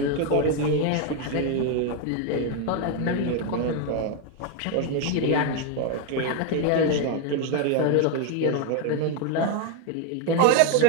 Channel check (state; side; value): different; both; correlation 0.01